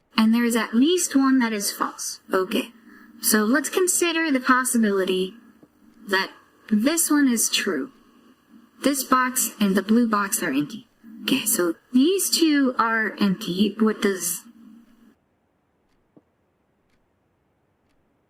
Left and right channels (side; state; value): both; identical; correlation 1.00